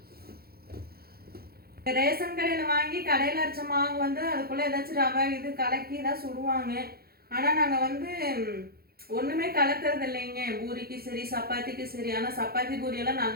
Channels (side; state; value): left; late; 0.44 ms